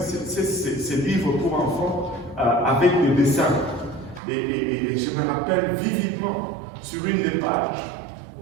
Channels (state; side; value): drops out; left; at 4.2 s